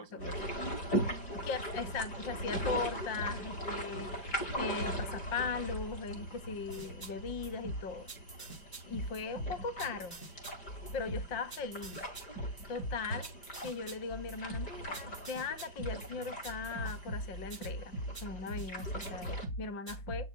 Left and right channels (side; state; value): right; late; 5.0 ms